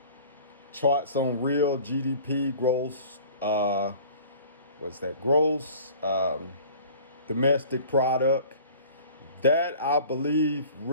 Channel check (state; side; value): inverted; both; correlation -0.46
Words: on real GDP, gross, gross domestic product. That, I believe,